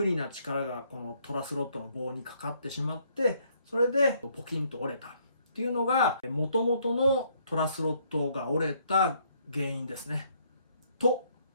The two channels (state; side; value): inverted; both; correlation -0.68